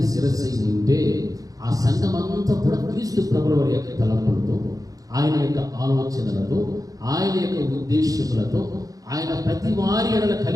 శిరస్సు అయి ఉంటే ఆ సంఘం అంతా కూడా క్రీస్తు ప్రభుల వారి యొక్క తలంపులతో, ఆయన యొక్క ఆలోచనలతో, ఆయన యొక్క ఉద్దేశములతో, ఆయన ప్రతి వారి ఎడల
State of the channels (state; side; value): late; left; 0.17 ms